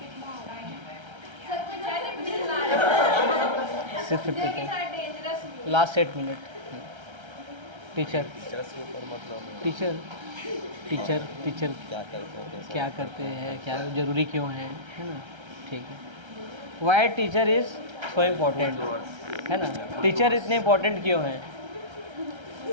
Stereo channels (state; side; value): late; left; 1.3 ms